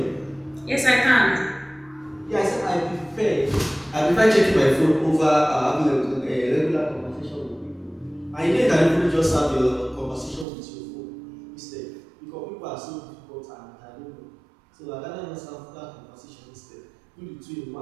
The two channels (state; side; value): drops out; left; at 10.5 s